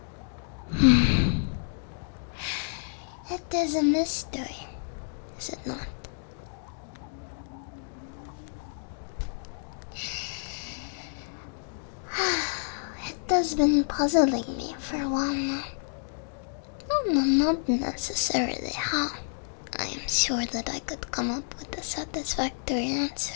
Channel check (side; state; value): right; silent; digital silence